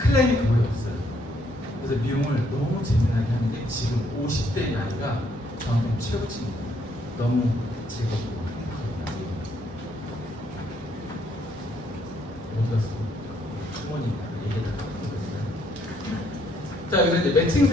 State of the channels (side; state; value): both; normal; correlation 0.69